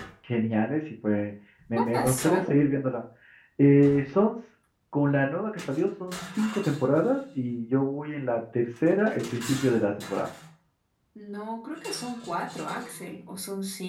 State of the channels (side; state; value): both; identical; correlation 1.00